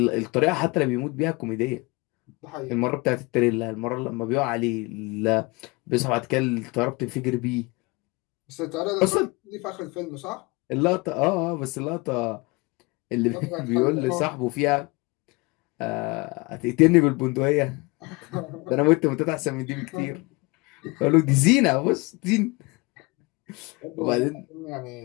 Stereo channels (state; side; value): quieter; right; 25.6 dB